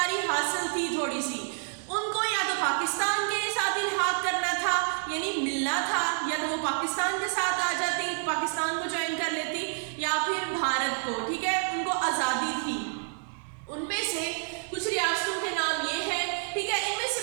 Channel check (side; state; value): left; silent; 59 dB below the other